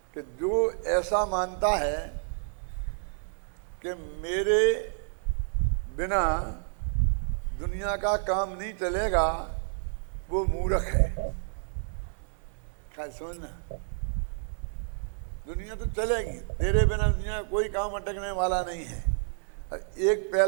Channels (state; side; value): silent; left; digital silence